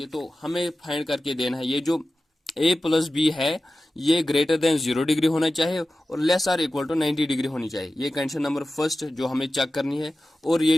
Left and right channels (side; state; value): both; normal; correlation 0.95